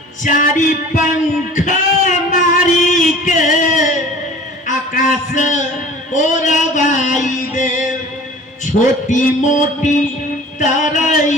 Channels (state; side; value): normal; both; correlation 0.44